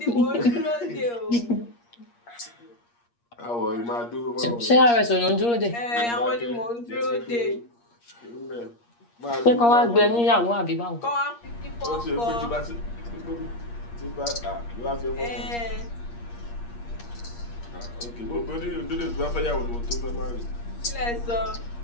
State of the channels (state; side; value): late; right; 8.5 ms